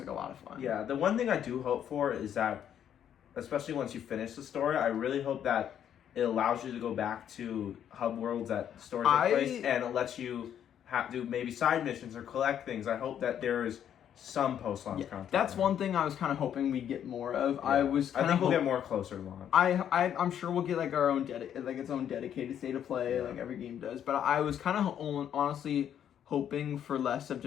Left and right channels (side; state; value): right; quieter; 9.6 dB